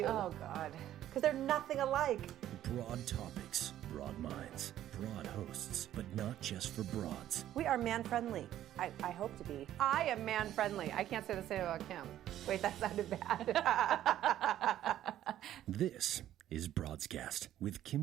Oh, God. Because they're nothing alike. Broad topics, broad minds, broad hosts, but not just for broads. We are man-friendly. I hope to be. I am man-friendly. I can't say the same about Kim. Wait, that sounded bad. This is Broadscast with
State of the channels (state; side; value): quieter; left; 12.2 dB